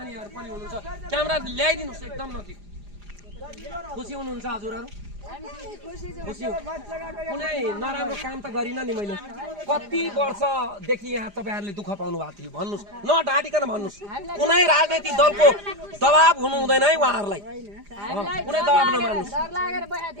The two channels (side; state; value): left; late; 4.9 ms